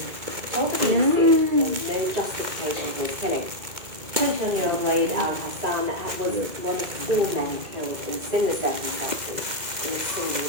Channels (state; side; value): late; left; 2.2 ms